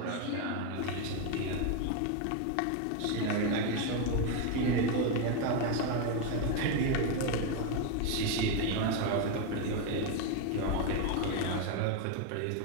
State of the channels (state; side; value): different; both; correlation 0.02